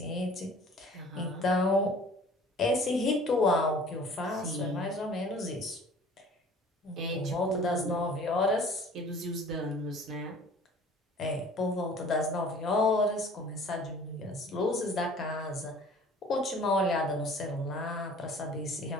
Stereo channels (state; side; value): normal; both; correlation 0.49